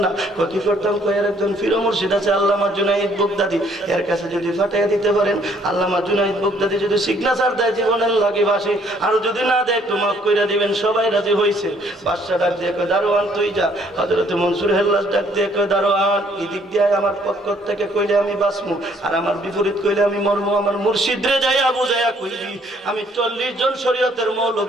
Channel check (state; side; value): normal; both; correlation 0.64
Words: না কি করতাম কয়ের একজন ফির মুর্শিদ আছে আল্লামা জুনাইদ বুগদাদি এর কাছে যদি ফাটাইয়া দিতে পারেন আল্লামা জুনাইদ বুগদাদি যদি সিগনেচার দেয় জীবনের লাগে বাসে আর যদি না দেয় একটু মাফ কইরা দিবেন সবাই রাজি হইছে বাদশা ডাক দিয়ে কয় দারোয়ান তুই যা হযরতে মনসুর হেল্লাস ডাক দিয়ে কয় দারোয়ান এদিক দিয়ে আমার পক্ষ থেকে কইলে আমি বাঁচমু, আর আমার বিপরীত কইলে আমি মরমু। আমার মুর্শিদরে যাইয়া বুঝাইয়া কইবি আমি 40 জন শরীয়তের